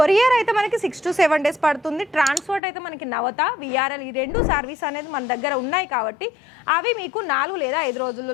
అయితే మనకి 6 to 7 days పడుతుంది, ట్రాన్స్పోర్ట్ అయితే మనకి నవత విఆర్ఎల్ ఈ 2 సర్వీస్ అనేది మన దగ్గర ఉన్నాయి కాబట్టి అవి మీకు 4 లేదా 5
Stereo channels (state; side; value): drops out; right; at 2.6 s